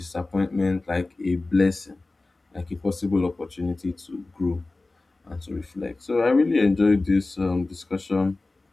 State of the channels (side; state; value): right; quieter; 3.2 dB